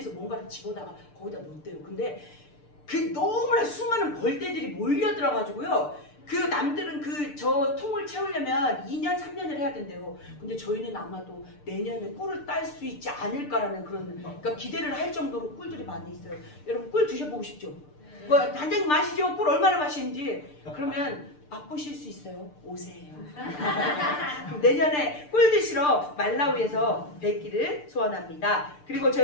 뭔가를 집어다가 거기다 놓대요. 근데 그 너무나 수많은 벌떼들이 몰려 들어가지고요. 그 남들은 저 통을 채우려면 2년 3년을 해야 된대요. 근데 저희는 아마도 내년에 꿀을 딸 수 있지 않을까라는 그런 그러니까 기대를 할 정도로 꿀들이 많이 있어요. 여러분 꿀 드셔보고 싶죠? 뭐 단장님 마시죠? 꿀 얼마나 맛있는지. 그러면 맛보실 수 있어요. 오세요. 그럼 내년에 꿀 드시러 말라위에서 뵙기를 소원합니다. 그리고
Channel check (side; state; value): right; late; 6.7 ms